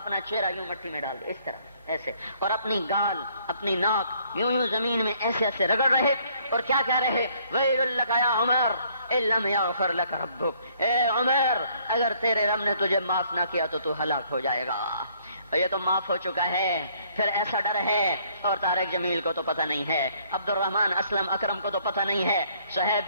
چہرہ یوں مٹی میں ڈال دے، اس طرح ایسے، اور اپنی گال اپنی ناک یوں زمین میں ایسے ایسے رگڑ رہے، اور کیا کہہ رہے؟ ویل لک یا عمر ان لم یغفر لک ربک، اے عمر اگر تیرے رب نے تجھے معاف نہ کیا تو ہلاک ہو جائے گا۔ یہ تو معاف ہو چکا ہے، پھر ایسا ڈر ہے۔ اور طارق جمیل کو تو پتہ نہیں ہے، عبد الرحمن اسلم اکرم کو تو پتہ نہیں ہے،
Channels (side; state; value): both; inverted; correlation -0.64